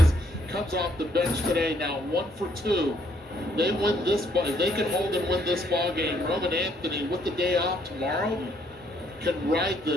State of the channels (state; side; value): normal; both; correlation 0.68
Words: comes off the bench today, now 1 for 2. They win this ball. If they can hold and win this ball game, Roman Anthony, with the day off tomorrow, can ride